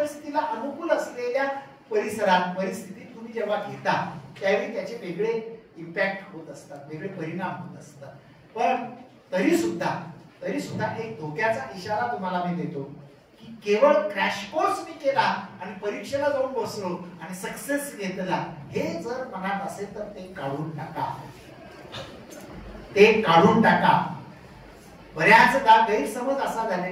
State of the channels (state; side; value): identical; both; correlation 1.00